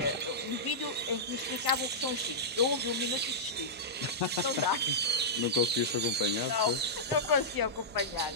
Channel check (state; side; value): normal; both; correlation -0.12